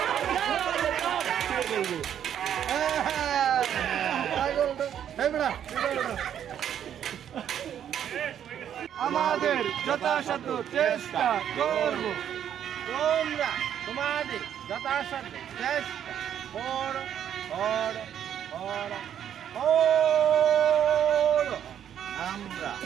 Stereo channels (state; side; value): quieter; left; 9.6 dB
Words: আমাদের যথাসাধ্য চেষ্টা করব, তোমরা তোমাদের যথাসাধ্য চেষ্টা করো করো করো করো।